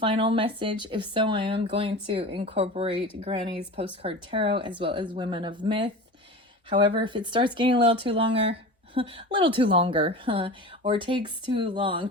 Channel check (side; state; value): both; normal; correlation 0.32